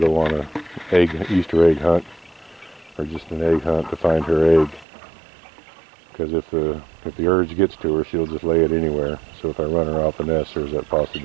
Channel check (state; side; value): drops out; left; at 4.9 s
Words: on a Easter egg hunt or just an egg hunt to find her egg. Because if the urge gets to her, she'll just lay it anywhere. So if I run her off the nest, there's that